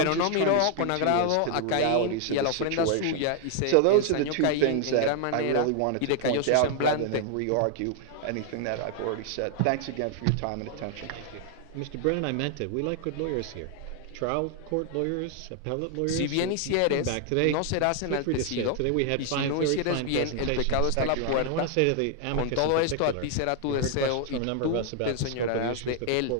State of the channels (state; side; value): different; both; correlation 0.00